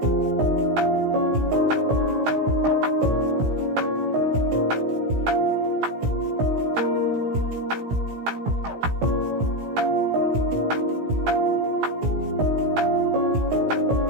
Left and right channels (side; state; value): left; late; 17 ms